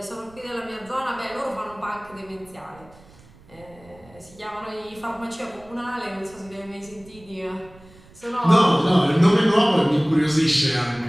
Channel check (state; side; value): noise; right; rumble, 25 dB below the sound